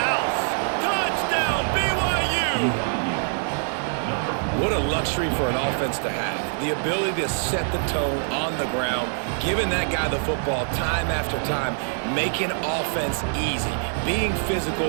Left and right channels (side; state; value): left; silent; 58 dB below the other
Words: Touchdown, BYU! What a luxury for an offense to have. The ability to set the tone on the ground, giving that guy the football time after time, making offense easy, being